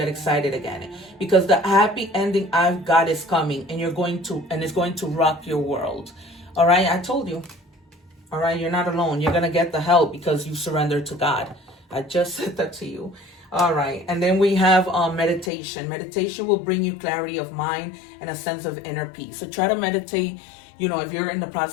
excited again. Because the happy ending I've got is coming, and it's going to rock your world. All right, I told you. All right, you're not alone. You're going to get the help because you surrender to God. I just said that to you. All right, and then we have meditation. Meditation will bring you clarity of mind and a sense of inner peace. So try to meditate. You know, if you're in the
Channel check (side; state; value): right; drops out; at 15.5 s